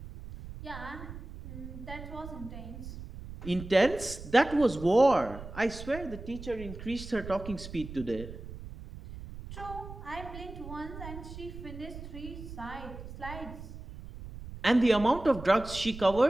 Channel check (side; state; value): right; noise; rumble, 12 dB below the sound